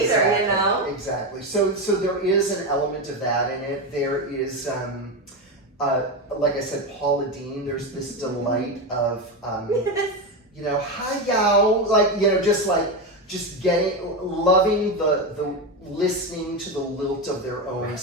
Exactly. So there is an element of that in it. There is, like I said, Paula Deen, there's this delight of, hi y'all, just loving the listening to the lilt of their own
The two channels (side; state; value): both; normal; correlation 0.14